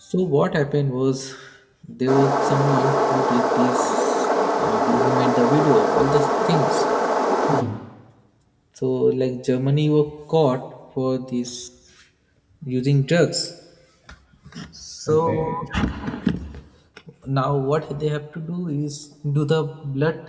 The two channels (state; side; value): identical; both; correlation 1.00